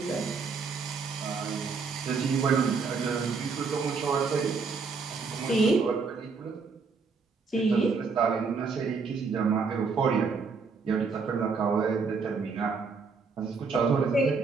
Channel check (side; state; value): left; quieter; 4.9 dB